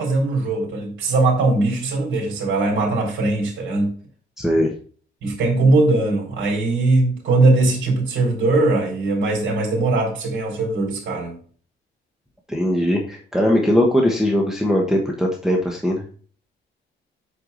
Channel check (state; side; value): normal; both; correlation 0.71